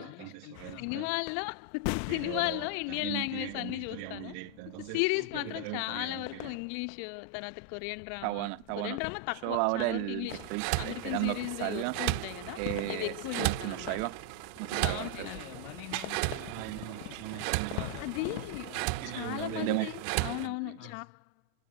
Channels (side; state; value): both; different; correlation 0.00